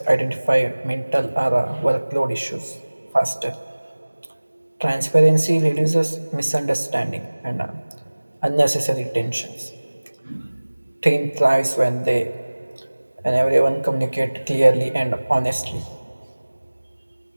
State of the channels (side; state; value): both; inverted; correlation -1.00